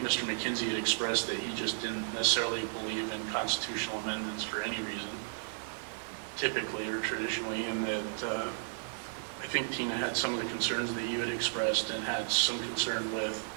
Mr. McKenzie had expressed that he just didn't necessarily believe in constitutional amendments for any reason, typically or traditionally, and that I think Tina had some of the concerns that you had expressed and had some concern with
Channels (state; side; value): silent; left; digital silence